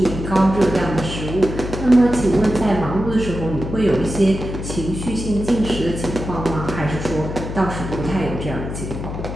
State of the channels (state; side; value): noise; left; hum, 7 dB below the sound